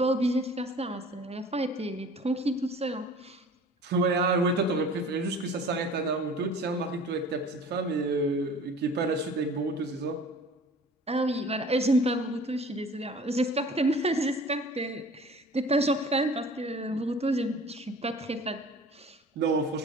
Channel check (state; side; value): normal; both; correlation 0.46